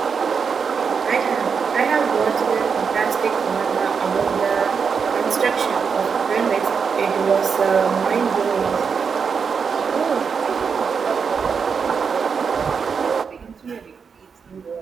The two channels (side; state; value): left; quieter; 6.0 dB